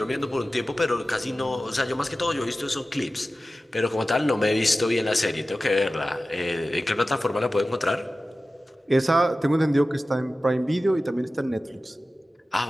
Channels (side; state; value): both; normal; correlation 0.95